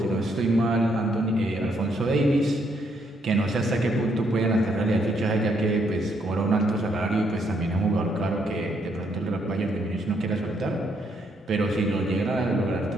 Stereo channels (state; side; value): normal; both; correlation 0.73